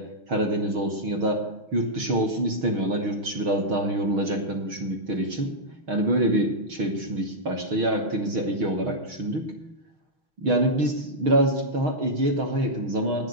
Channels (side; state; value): left; late; 6.4 ms